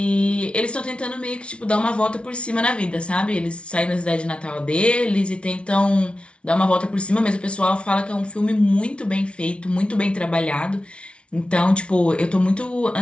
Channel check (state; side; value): late; right; 0.059 ms